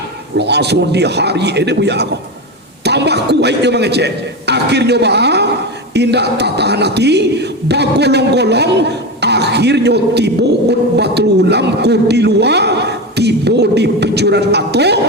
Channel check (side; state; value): both; normal; correlation 0.19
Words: langsung di hari ini buya ko tambah kuat dia mengecek akhirnya indah tahan hati bagolong-golong akhirnya tibo Batul Ulam ku di luar tibo di penjuran atau